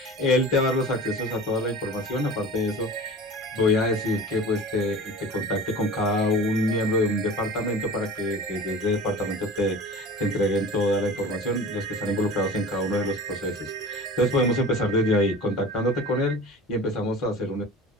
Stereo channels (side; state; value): both; normal; correlation 0.38